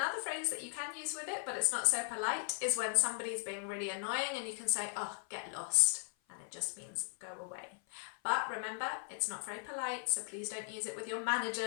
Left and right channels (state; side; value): silent; right; 53 dB below the other